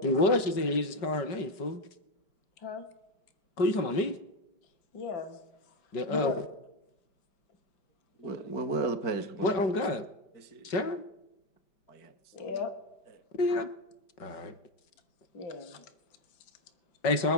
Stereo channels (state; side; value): late; right; 5.4 ms